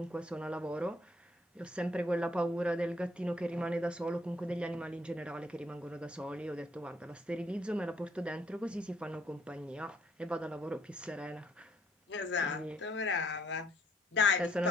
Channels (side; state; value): both; normal; correlation 0.66